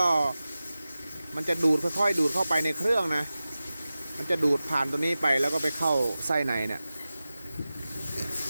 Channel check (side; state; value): both; inverted; correlation -0.96